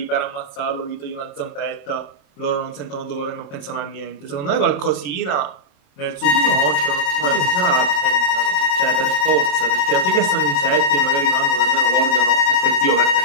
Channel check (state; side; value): late; right; 28 ms